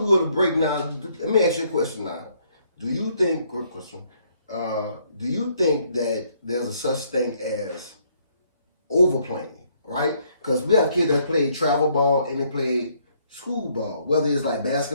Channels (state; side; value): inverted; both; correlation -0.68